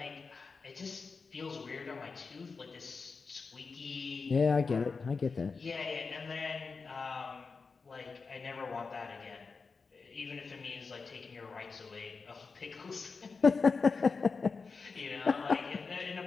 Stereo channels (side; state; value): right; quieter; 4.7 dB